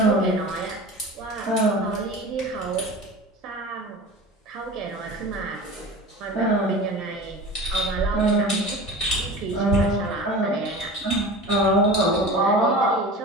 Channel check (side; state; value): both; normal; correlation 0.35